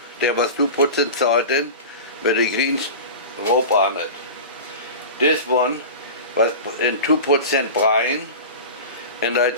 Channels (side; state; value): both; inverted; correlation -0.30